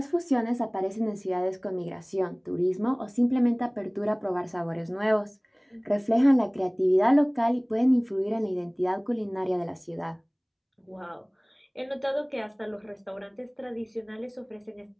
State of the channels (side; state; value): both; identical; correlation 1.00